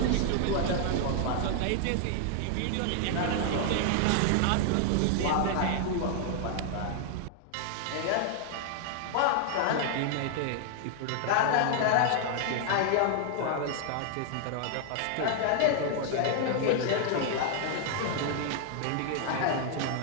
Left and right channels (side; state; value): both; different; correlation 0.00